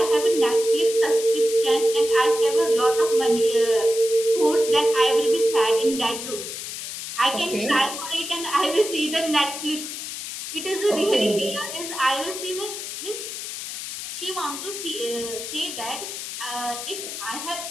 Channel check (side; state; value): left; noise; hiss, 7 dB below the sound